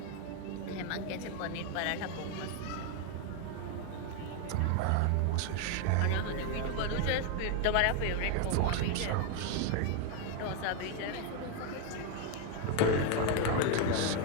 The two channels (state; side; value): different; both; correlation 0.01